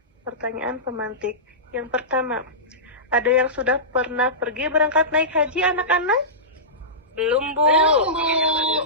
Pertanyaan pemantik. Yang pertama, ada yang sudah pernah pergi berangkat naik haji anak-anak? Belum Bu.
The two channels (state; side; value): normal; both; correlation -0.18